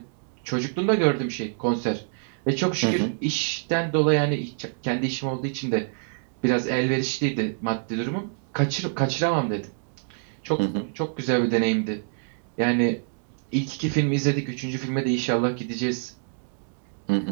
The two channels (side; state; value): left; silent; 61 dB below the other